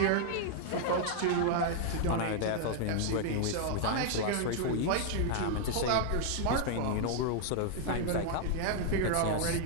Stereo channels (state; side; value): different; both; correlation -0.01